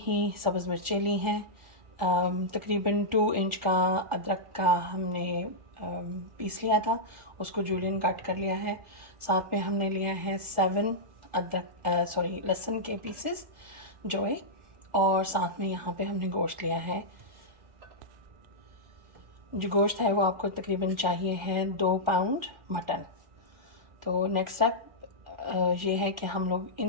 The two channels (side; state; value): left; late; 1.4 ms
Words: सब्ज़ मिर्चें ली हैं। तकरीबन 2 इंच का अदरक का हमने पीस लिया था, उसको जूलियन कट कर लिया है। साथ में हमने लिया है 7 लहसुन के पीसेस जोए, और साथ में यहाँ पे हमने गोश्त लिया है। जो गोश्त है वो आपको तकरीबन चाहिए है 2 पाउंड मटन। तो नेक्स्ट स्टेप ये है कि हम लोग